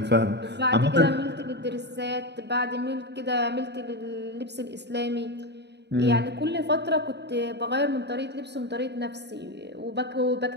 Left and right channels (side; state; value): left; late; 0.50 ms